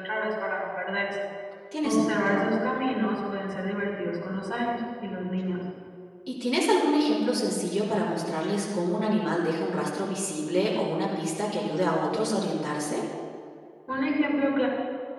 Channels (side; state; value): both; identical; correlation 1.00